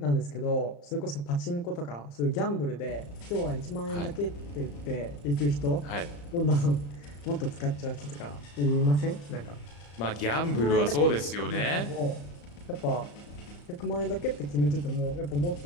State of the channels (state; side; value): late; right; 35 ms